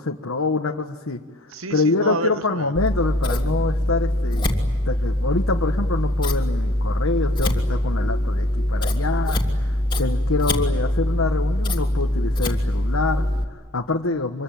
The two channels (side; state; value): both; normal; correlation 0.56